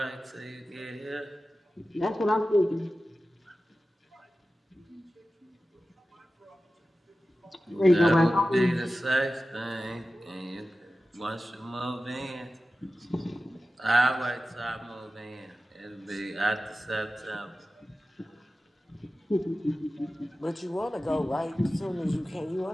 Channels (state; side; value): normal; both; correlation 0.95